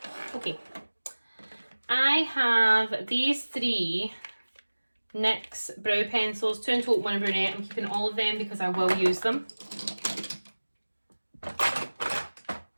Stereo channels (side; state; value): both; inverted; correlation -1.00